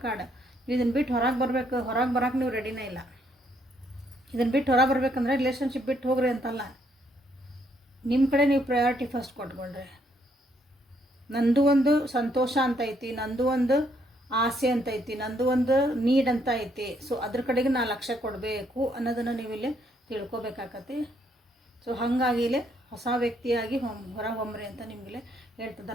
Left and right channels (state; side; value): normal; both; correlation 0.71